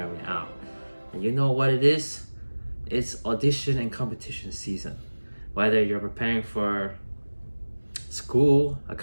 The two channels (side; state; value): both; inverted; correlation -1.00